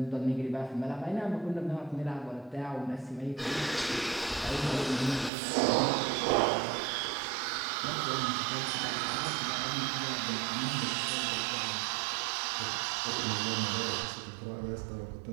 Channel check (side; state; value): left; drops out; at 5.3 s